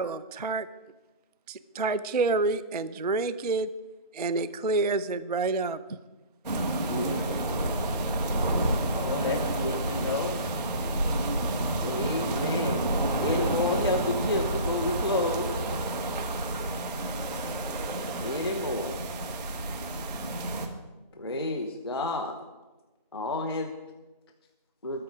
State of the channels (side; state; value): both; inverted; correlation -0.34